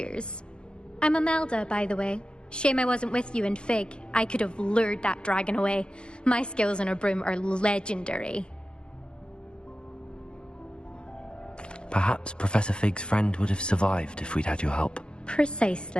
I'm Imelda, by the way. Shame I wasn't with you in Fig. I could have lured that dragon away. My skills on a broom are legendary. Perhaps Professor Fig's friend would have survived if we'd had your help.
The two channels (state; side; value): late; right; 0.052 ms